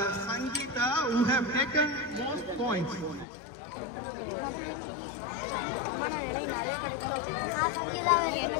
Sangeeta who have taken most points.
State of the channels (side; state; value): right; drops out; at 3.2 s